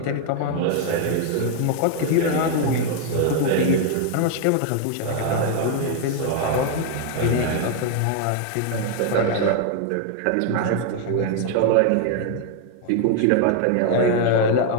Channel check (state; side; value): different; both; correlation 0.00